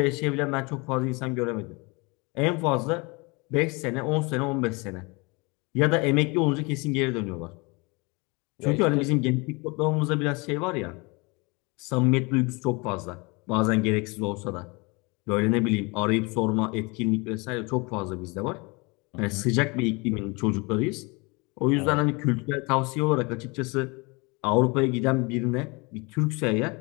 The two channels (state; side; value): quieter; right; 27.9 dB